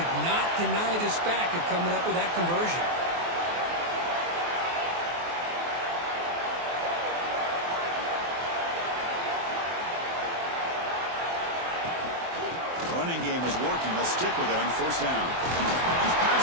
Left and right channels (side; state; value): left; late; 23 ms